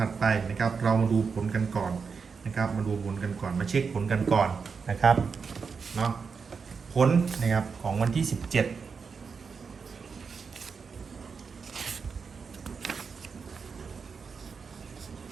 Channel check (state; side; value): quieter; left; 5.5 dB